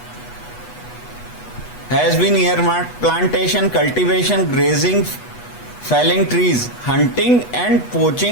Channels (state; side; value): late; right; 8.2 ms